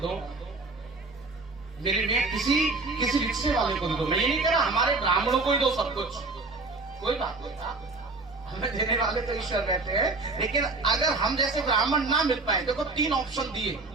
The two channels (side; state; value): left; quieter; 3.6 dB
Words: मेरे लिए किसी रिक्शे वाले को दे दो। मैं ये नहीं कह रहा हमारे ब्राह्मणों को ही दो सब कुछ, कोई बात नहीं, हमें देने वाले तो ईश्वर बैठे हैं। लेकिन अगर हम जैसे ब्राह्मण ना मिल पाए, देखो 3 ऑप्शन दिए,